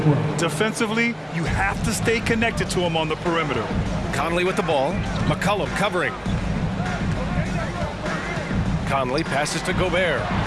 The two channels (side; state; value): both; identical; correlation 1.00